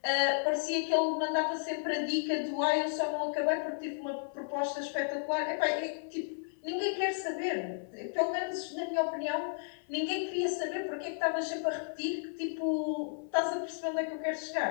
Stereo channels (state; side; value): silent; right; 56 dB below the other